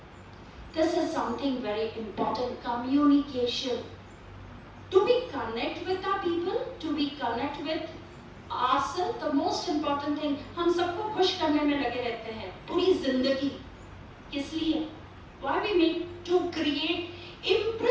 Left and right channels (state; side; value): identical; both; correlation 1.00